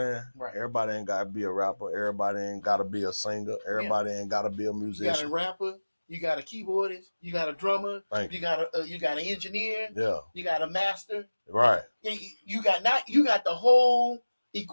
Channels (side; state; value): both; inverted; correlation -1.00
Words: Right. Everybody ain't got to be a rapper. Everybody ain't got to be a singer. Everybody ain't got to be a musician. You got a rapper. You got a keyboardist. You got a drummer. You got an engineer. Yeah. You got a master. Right. You got the whole